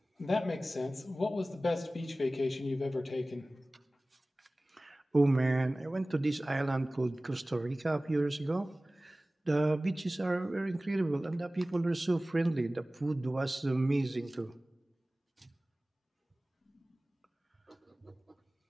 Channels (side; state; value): both; normal; correlation 0.98